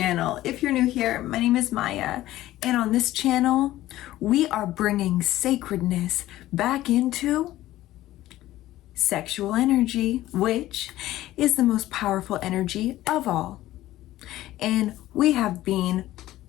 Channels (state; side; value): quieter; right; 15.2 dB